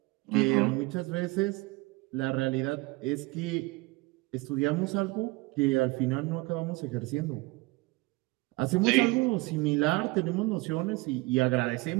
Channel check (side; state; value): left; quieter; 23.2 dB